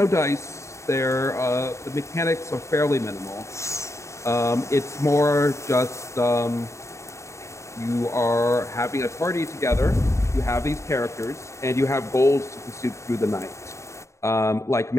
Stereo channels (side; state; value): right; late; 0.14 ms